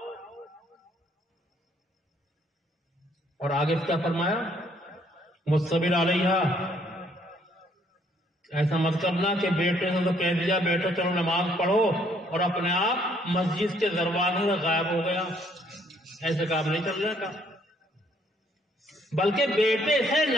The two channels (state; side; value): normal; both; correlation 0.66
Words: اور آگے کیا فرمایا؟ مصبر علیہ، ایسا مت کرنا کہ بیٹے نے تو کہہ دیا بیٹا چلو نماز پڑھو اور اپنے آپ مسجد کے دروازے سے غائب ہو گیا، ایسے کام نہیں چلنے کا، بلکہ بیٹے سے